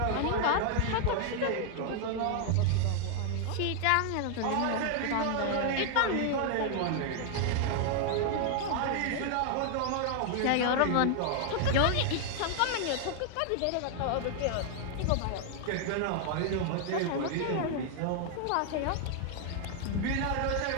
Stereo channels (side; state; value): both; different; correlation 0.00